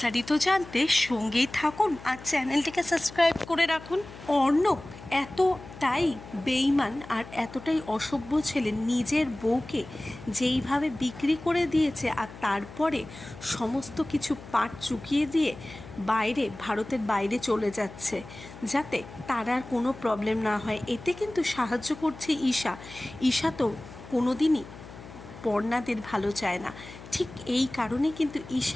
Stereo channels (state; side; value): noise; left; hum, 16 dB below the sound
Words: জানতে সঙ্গেই থাকুন আর চ্যানেলটিকে সাবস্ক্রাইব করে রাখুন। অর্ণব এতটাই বেইমান আর এতটাই অসভ্য ছেলে, নিজের বউকে যেইভাবে বিক্রি করে দিয়েছে আর তারপরে সমস্ত কিছু পাট চুকিয়ে দিয়ে ভারতের বাইরে চলে যাচ্ছে যাতে তার আর কোনো প্রবলেম না হয়। এতে কিন্তু সাহায্য করছে ঈশা। ঈশা তো কোনোদিনই পর্ণাদের ভালো চায় না, ঠিক এই কারণে কিন্তু